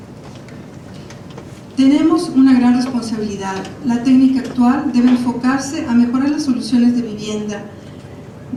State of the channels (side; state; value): both; identical; correlation 1.00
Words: Tenemos una gran responsabilidad. La técnica actual debe enfocarse a mejorar las soluciones de vivienda.